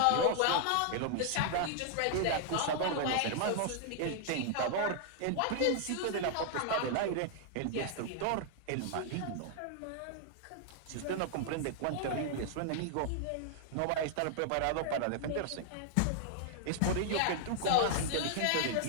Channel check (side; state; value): both; different; correlation -0.01